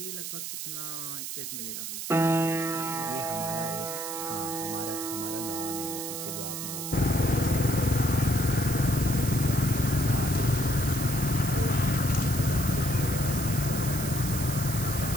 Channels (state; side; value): noise; right; hiss, 6 dB below the sound